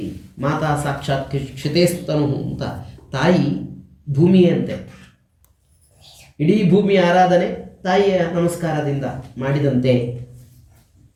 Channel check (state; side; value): identical; both; correlation 1.00